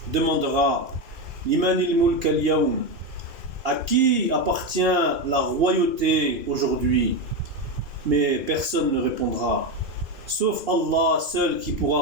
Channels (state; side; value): late; left; 2.4 ms